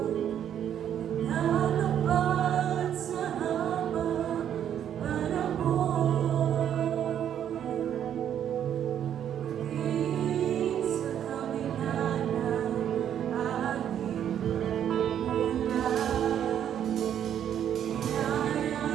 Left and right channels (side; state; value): left; quieter; 9.7 dB